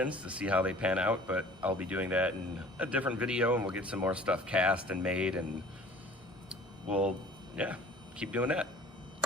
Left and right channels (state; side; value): normal; both; correlation 0.48